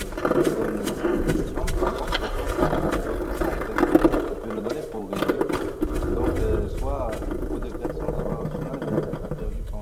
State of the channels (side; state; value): both; identical; correlation 1.00